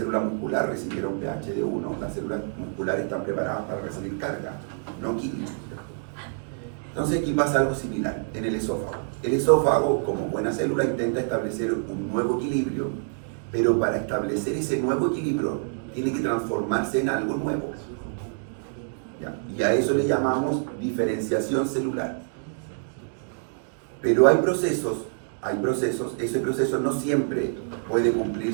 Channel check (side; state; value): left; silent; digital silence